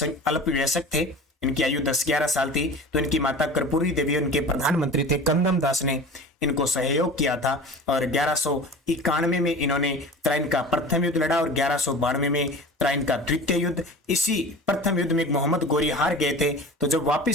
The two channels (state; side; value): normal; both; correlation 0.37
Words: थे, इनकी आयु 10-11 साल थी, तो इनकी माता कर्पूरी देवी उनके प्रधानमंत्री थे। कंदम दास ने इनको सहयोग किया था और 1191 में इन्होंने त्राइन का प्रथम युद्ध लड़ा और 1192 में त्राइन का द्वितीय युद्ध। इसी प्रथम युद्ध में मोहम्मद गोरी हार गए थे, तो जब